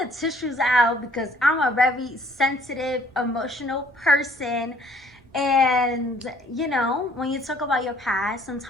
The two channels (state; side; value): normal; both; correlation 0.59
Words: tissues out because I'm a very sensitive, emotional person. And, you know, when you talk about your past,